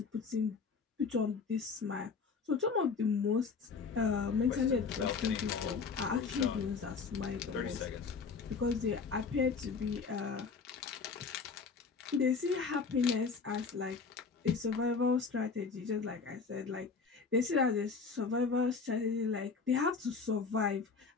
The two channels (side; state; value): right; quieter; 5.0 dB